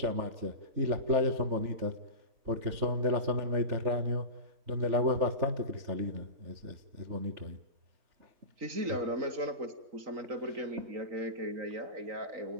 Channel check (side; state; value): left; late; 3.4 ms